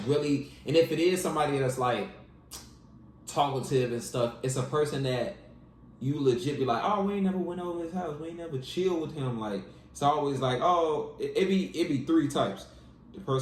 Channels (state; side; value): identical; both; correlation 1.00